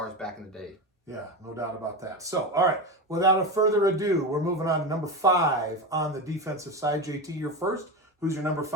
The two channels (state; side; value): normal; both; correlation 0.19